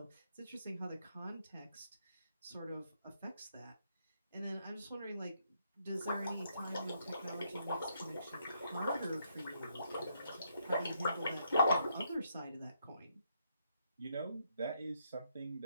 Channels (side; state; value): both; inverted; correlation -0.76